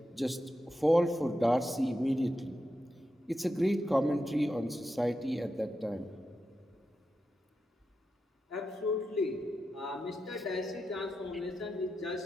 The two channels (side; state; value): both; normal; correlation 0.88